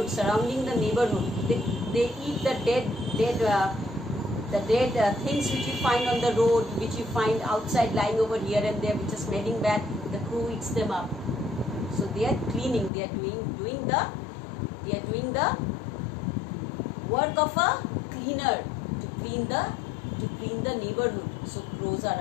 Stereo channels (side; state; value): right; drops out; at 12.9 s